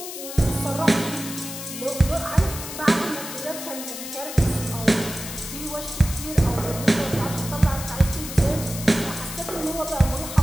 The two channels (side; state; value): left; noise; hiss, 9 dB below the sound